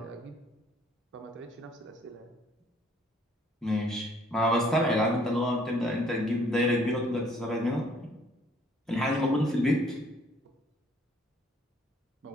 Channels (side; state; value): both; normal; correlation 0.61